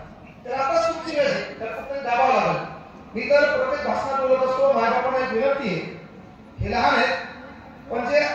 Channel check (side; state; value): both; identical; correlation 1.00